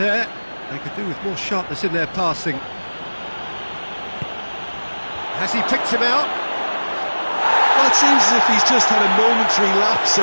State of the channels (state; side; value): inverted; both; correlation -1.00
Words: They could do with more sharpness in their passing. Has he picked him out? Well, it seems as if he's just had a momentary lapse